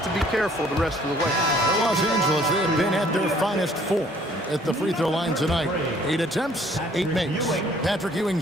to be careful the rest of the way. For Los Angeles, they have been at their finest form at the free throw line tonight. 8 attempts, 8 makes. Patrick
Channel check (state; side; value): normal; both; correlation 0.59